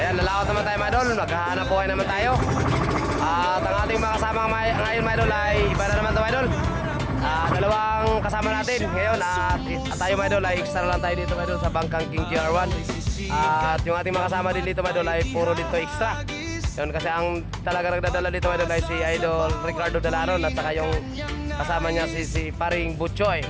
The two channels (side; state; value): both; identical; correlation 1.00